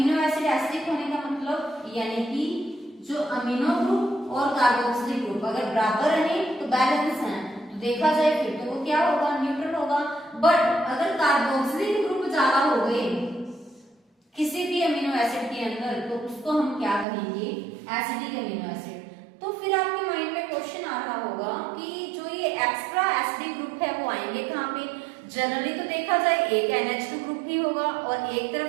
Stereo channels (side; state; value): left; drops out; at 17.1 s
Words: एसिड एसिडिक होने का मतलब यानी कि जो अमीनो ग्रुप और कार्बोक्सिलिक ग्रुप अगर बराबर रहे तो बैलेंस है, तो देखा जाए फिर तो वो क्या होगा, न्यूट्रल होगा। बट अगर कार्बोक्सिलिक ग्रुप ज्यादा हो गए किसी भी अमीनो एसिड के अंदर, तो उसको हम क्या कहेंगे, एसिडिक अमीनो एसिड। तो फिर आपके माइंड में क्वेश्चन आ रहा होगा कि जो ये एक्स्ट्रा एसिडिक ग्रुप है वो आएंगे कहाँ पे। जनरली तो देखा जाए एक NH2 ग्रुप भी होगा और एक तरफ